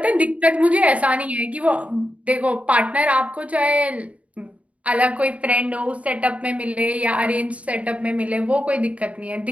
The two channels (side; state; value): left; late; 0.066 ms